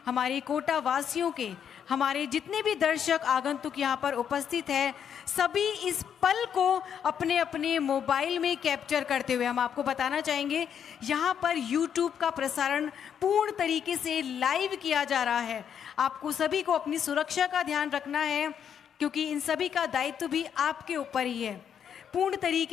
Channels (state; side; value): quieter; right; 8.3 dB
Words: हमारे कोटा वासियों के, हमारे जितने भी दर्शक आगंतुक यहाँ पर उपस्थित है, सभी इस पल को अपने अपने मोबाइल में कैप्चर करते हुए, हम आपको बताना चाहेंगे यहाँ पर YouTube का प्रसारण पूर्ण तरीके से लाइव किया जा रहा है। आपको सभी को अपनी सुरक्षा का ध्यान रखना है, क्योंकि इन सभी का दायित्व भी आपके ऊपर ही है। पूर्ण